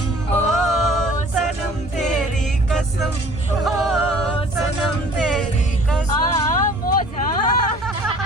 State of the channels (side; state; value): both; normal; correlation 0.51